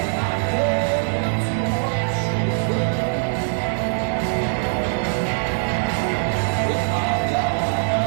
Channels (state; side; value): silent; left; 64 dB below the other